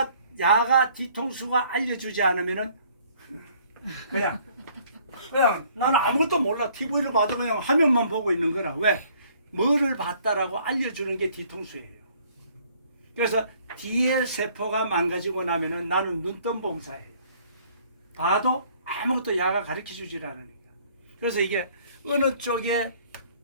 뒤통수가 알려주지 않으면은 그냥 나는 아무것도 몰라. TV를 봐도 그냥 화면만 보고 있는 거라. 왜? 뭐를 봤다라고 알려주는 게 뒤통수예요. 그래서 뒤에 세포가 망가지고 나면은 나는 눈뜬봉사예요. 봐도 아무것도 야가 가르쳐주질 않으니까. 그래서 이게 어느 쪽에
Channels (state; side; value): inverted; both; correlation -0.59